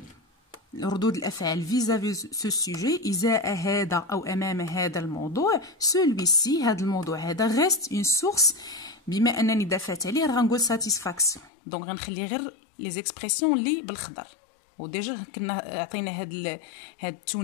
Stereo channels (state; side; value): drops out; right; at 11.5 s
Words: ردود الافعال فيزافي سو سوجي ازاء هذا او امام هذا الموضوع سولويسي هذا الموضوع هذا غيست اون سورس. بما انني دافعت عليه راه غنقول ساتيسفاكسيون. دونك غنخلي غير لي زيكسبرسيون اللي بالخضر. وديجا كنا عطينا هاد